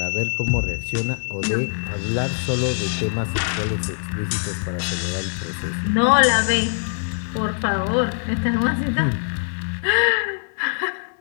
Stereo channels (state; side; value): silent; right; digital silence